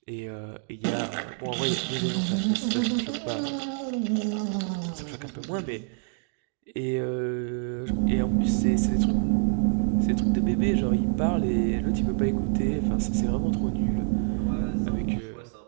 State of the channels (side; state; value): left; silent; 57 dB below the other